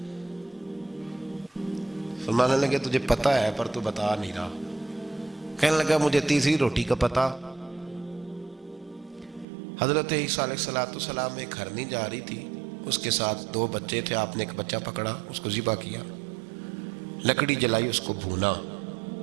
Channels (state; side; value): drops out; left; at 9.5 s